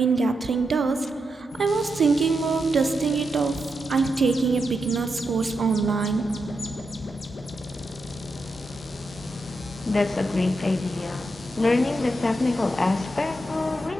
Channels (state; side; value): normal; both; correlation 0.85